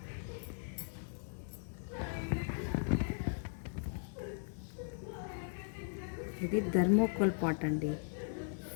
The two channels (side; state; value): right; silent; digital silence